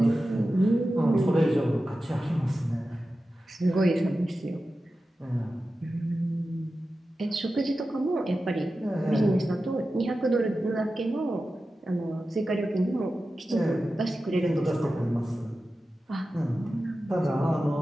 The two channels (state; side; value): normal; both; correlation 0.93